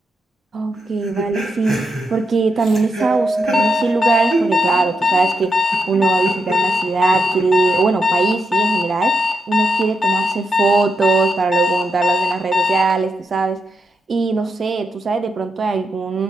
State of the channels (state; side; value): normal; both; correlation 0.83